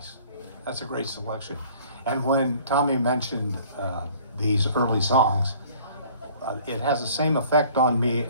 That's a great selection. And when Tommy mentioned these early songs, it has the same effect on me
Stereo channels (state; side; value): inverted; both; correlation -0.53